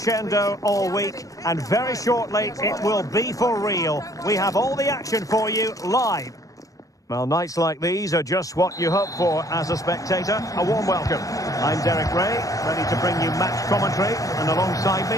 all week, and very shortly it will be for real. We have all the action for you live. Well, nights like these are just what you hope for as a spectator. A warm welcome. I'm Derek Ray, ready to bring you match commentary, and alongside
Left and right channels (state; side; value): late; right; 0.17 ms